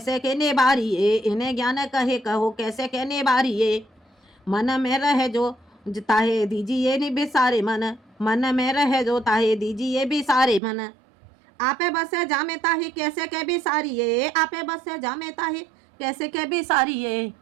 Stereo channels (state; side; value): drops out; left; at 10.6 s